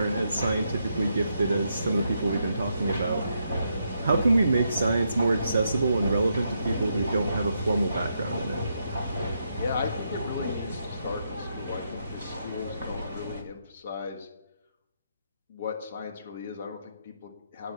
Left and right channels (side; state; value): both; inverted; correlation -0.79